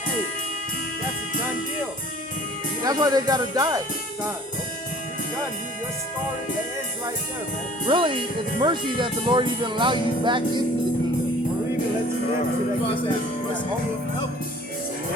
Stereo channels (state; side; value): normal; both; correlation 0.51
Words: hey, that's a done deal. That's why they gotta die. Done. You're done. Your story ends right there, man. Really, it's mercy that the Lord even allowed you back into the kingdom. Or even lets you live to God that said, "Mercy, that you will help."